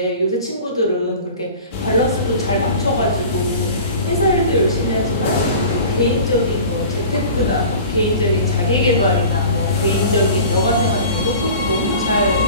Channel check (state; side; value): inverted; both; correlation -0.40